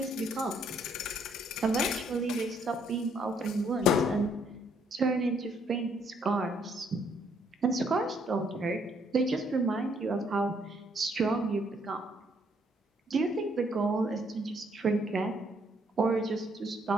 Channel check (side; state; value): both; normal; correlation 0.68